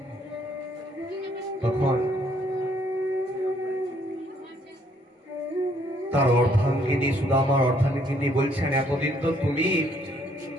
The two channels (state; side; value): normal; both; correlation 0.67